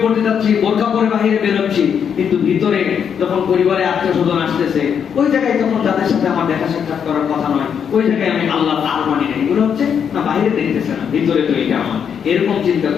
পড়তে যাচ্ছি, বোরকা পরে বাইরে বেরোচ্ছি, কিন্তু ভিতরে যখন পরিবারে আত্মীয় স্বজন আসতেছে, ওই জায়গায় যখন যাদের সাথে আমার দেখা সাক্ষাৎ করার কথা নয়, ওই জায়গায় আমি আল্লাহ তার মানি না। এগুলো হচ্ছে না বাইরে দেখতেছে না, ভিতরে তো এটা আমার, এরকম চিন্তা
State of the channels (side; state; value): right; quieter; 7.6 dB